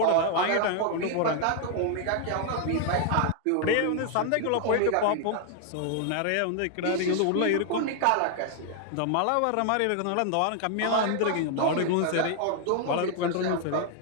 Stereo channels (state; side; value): different; both; correlation 0.00